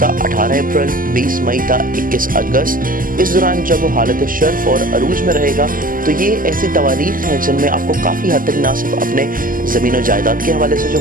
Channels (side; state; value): left; late; 0.41 ms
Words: था 18 अप्रैल, 20 मई था 21 अगस्त, इस दौरान जब वो हालत शर्फ और अरूज में रहेगा, तो ये ऐसी तवारीख हैं जिनमें आपको काफ़ी हद तक ना सिर्फ अपने ज़मीन और जायदाद के हवाले से जो